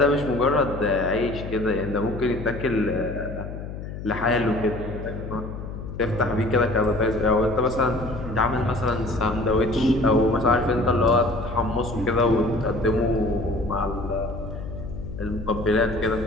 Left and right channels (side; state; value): left; noise; hum, 9 dB below the sound